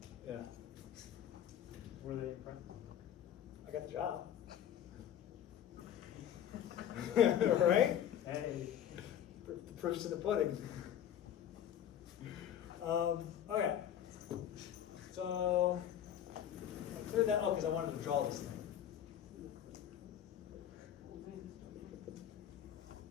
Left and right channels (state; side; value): quieter; right; 10.2 dB